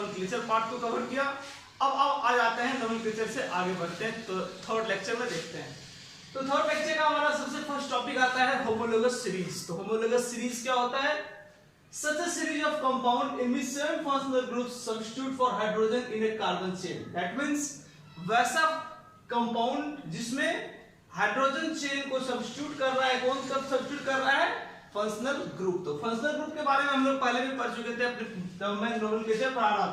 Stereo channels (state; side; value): identical; both; correlation 1.00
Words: पार्ट को कवर किया। अब आ जाते हैं नोमेनक्लेचर से आगे बढ़ते हैं, तो थर्ड लेक्चर में देखते हैं। तो थर्ड लेक्चर का हमारा सबसे फर्स्ट टॉपिक आता है होमोलोगस सीरीज। तो होमोलोगस सीरीज क्या होता है? Such a series of compound in which seven functional groups substitute for hydrogen in a carbon chain. That means वैसा कंपाउंड जिसमें हाइड्रोजन चेन को सब्स्टिट्यूट कर रहा है। कौन कब सब्स्टिट्यूट कर रहा है? Functional group. तो फंक्शनल ग्रुप के बारे में हम लोग पहले भी पढ़ चुके थे, अपने जब मैं नोमेनक्लेचर पढ़ा रहा